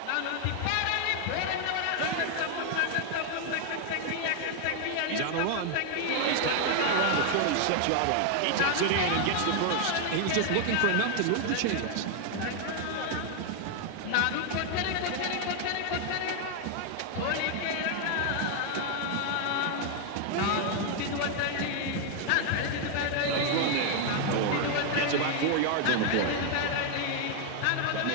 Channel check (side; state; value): both; different; correlation 0.00